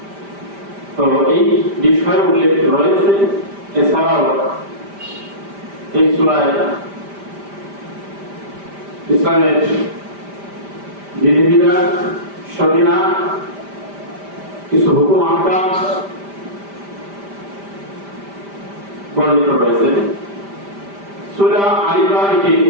তো এই বিষয় উল্লেখ রয়েছে। এছাড়াও এই সূরায় ইসলামের বিধিবিধান, শরীয়ত, কিছু হুকুম আহকাম বর্ণিত রয়েছে। সূরা আল ইমরান কি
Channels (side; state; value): left; late; 5.1 ms